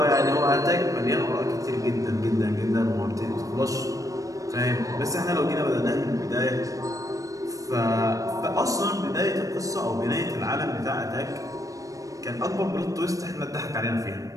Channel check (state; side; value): late; left; 0.16 ms